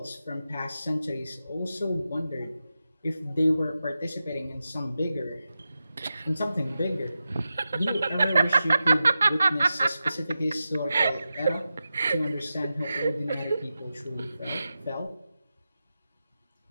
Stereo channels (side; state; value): both; inverted; correlation -0.92